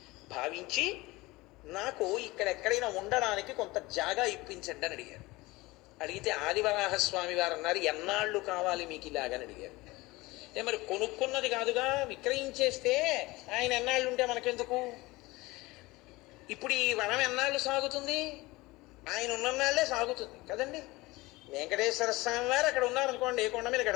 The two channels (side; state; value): right; quieter; 21.1 dB